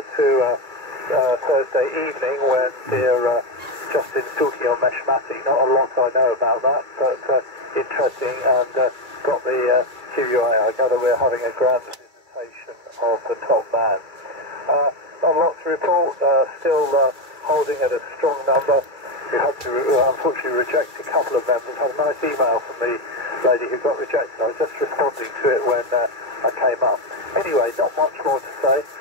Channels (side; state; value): left; late; 2.3 ms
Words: to Thursday evening when they're Justin's talking on Meshmati. Not a lot I know about that, but interesting, and got the QUA. I gather we're having a grand visitation of the top man. Not a lot to report, still holding at a strong number. We had to unfortunately reject a couple of members. I had a nice email from the lady who got rejected. I was just responding to it when I came up. Anyway, not much more to say.